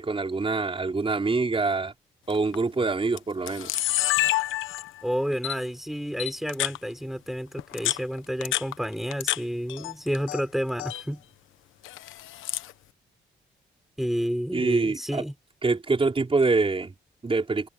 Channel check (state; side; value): normal; both; correlation 0.61